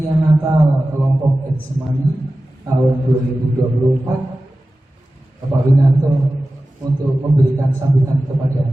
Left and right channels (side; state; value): both; normal; correlation 0.95